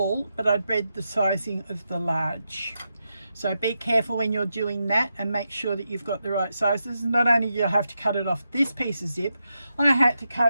but I'd read the sizing of the large. So be careful when you're doing that and make sure that you've got the right sizes. Not only do you have to cut it off this piece of zip, I had to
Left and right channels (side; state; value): both; inverted; correlation -0.86